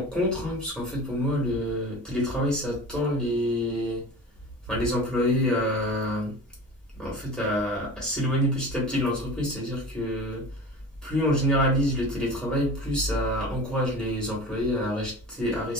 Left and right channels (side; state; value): both; normal; correlation 0.36